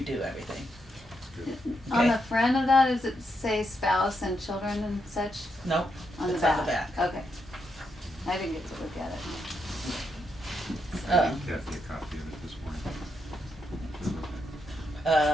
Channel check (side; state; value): both; normal; correlation 0.81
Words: everything. on Okay. the front of that, does it say spouse and children and such? Nope, On the it's back? on the back. Okay. I didn't get to look at it. I gave Kathy a copy of it this morning.